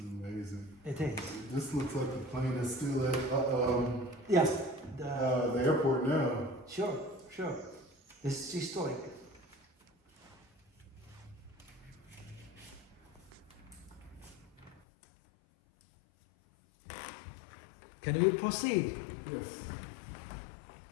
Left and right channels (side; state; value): right; drops out; at 14.8 s